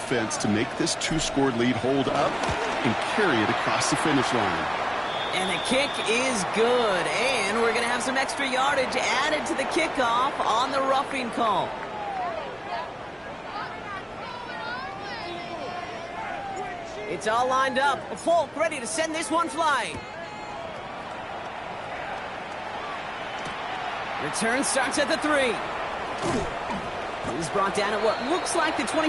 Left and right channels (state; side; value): identical; both; correlation 1.00